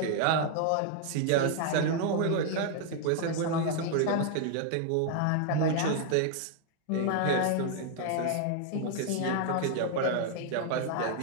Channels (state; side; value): different; both; correlation 0.00